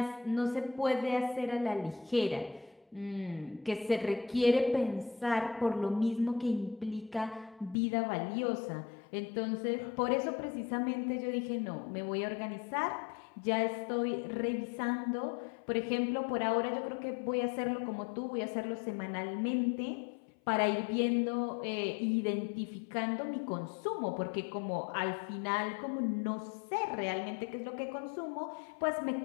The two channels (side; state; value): right; drops out; at 7.8 s